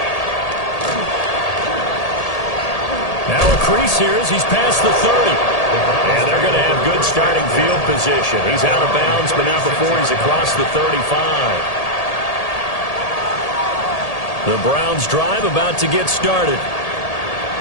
Now a crease here as he's past the 30. And they're going to have good starting field position. He's out of bounds, but not before he's across the 35. The Browns drive about to get started.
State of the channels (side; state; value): right; late; 1.8 ms